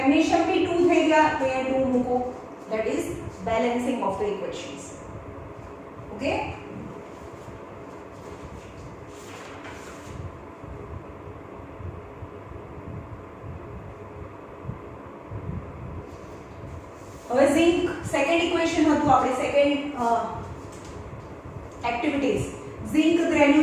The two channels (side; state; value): both; identical; correlation 1.00